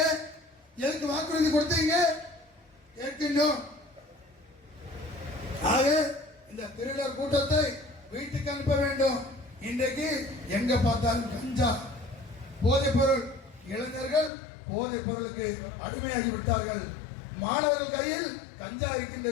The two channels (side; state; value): right; drops out; at 14.3 s